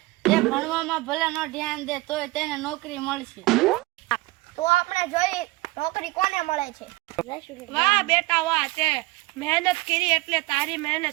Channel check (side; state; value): left; quieter; 21.2 dB